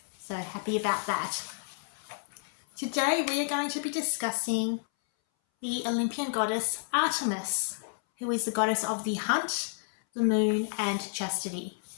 so happy about that. Today we are going to be discussing the Olympian goddess Artemis, who is the goddess of the hunt, the moon and chastity.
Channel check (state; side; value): silent; right; 58 dB below the other